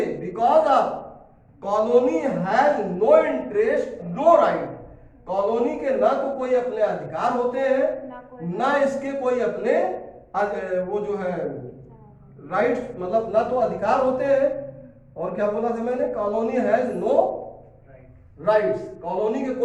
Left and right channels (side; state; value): both; identical; correlation 1.00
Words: because of colony has no interest no right. Colony के ना तो कोई अपने अधिकार होते हैं ना इसके कोई अपने वो जो है राइट्स, मतलब ना तो अधिकार होते हैं। और क्या बोला था मैंने? Colony has no rights. Colony के